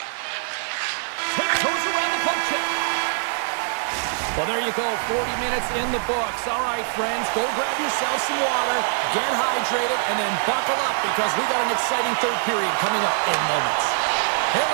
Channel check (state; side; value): silent; left; digital silence